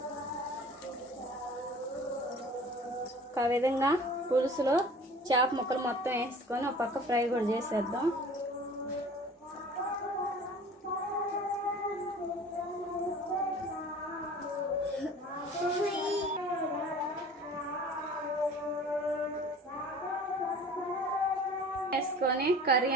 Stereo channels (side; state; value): both; normal; correlation 0.44